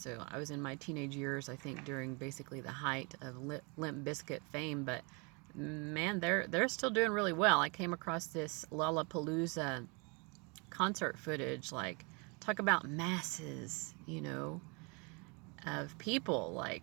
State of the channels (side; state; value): left; quieter; 31.5 dB